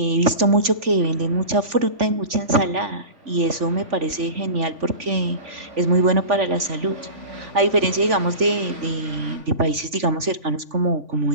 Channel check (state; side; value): late; left; 3.5 ms